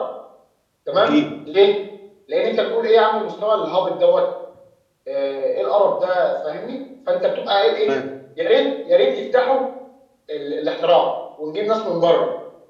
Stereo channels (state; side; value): identical; both; correlation 1.00